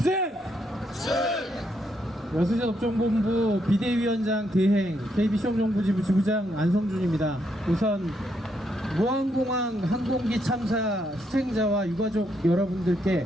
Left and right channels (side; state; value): both; normal; correlation 0.77